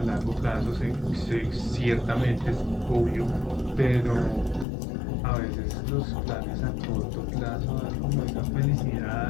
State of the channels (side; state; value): right; drops out; at 4.7 s